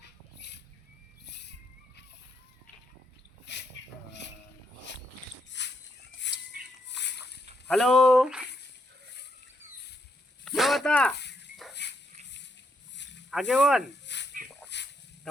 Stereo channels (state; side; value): normal; both; correlation 0.78